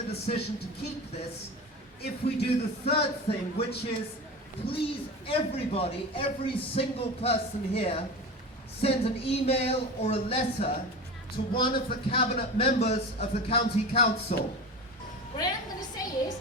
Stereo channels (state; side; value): normal; both; correlation 0.30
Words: decision to keep this if we do the third thing, which is, please everybody, every single person here, send an email or a letter to one of the cabinet members of the county council. What I am going to say is,